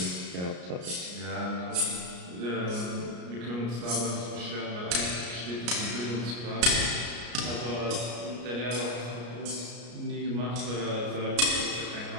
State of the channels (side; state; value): left; late; 33 ms